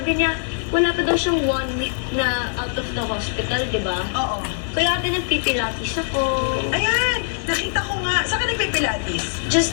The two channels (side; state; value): right; silent; digital silence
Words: niya, wala pa daw siyang 1 week na out of the hospital, di ba? Oo. Kaya ate nagpipilates ako. Ayan, nakita ko nga. Saan ka nagpipilates?